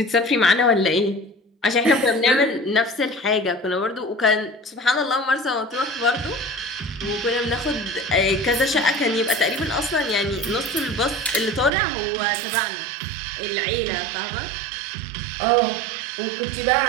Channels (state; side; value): drops out; left; at 11.7 s